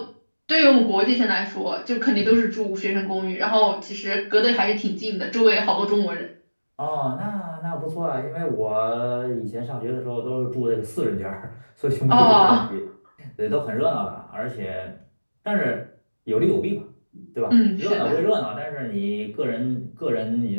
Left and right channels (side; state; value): both; inverted; correlation -1.00